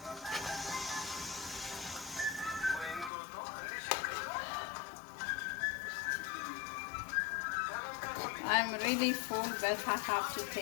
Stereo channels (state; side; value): drops out; right; at 3.1 s